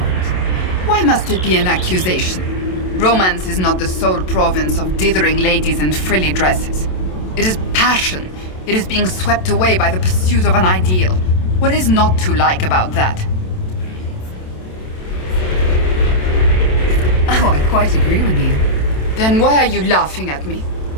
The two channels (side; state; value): right; late; 27 ms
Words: Why must it be an accusation? Romance is not the sole province of dithering ladies in frilly dresses. It is passion. It is being swept away by the pursuit of an ideal. What is not to like about that? Oh, I quite agree with you. Then why are you laughing at me?